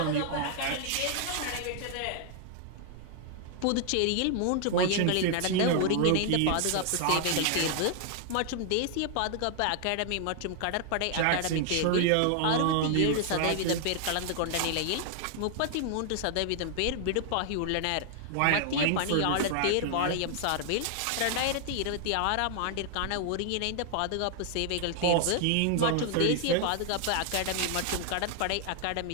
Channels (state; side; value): different; both; correlation 0.00